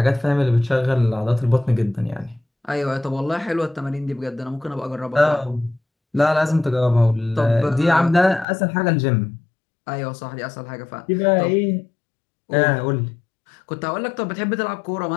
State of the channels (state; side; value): drops out; right; at 8.5 s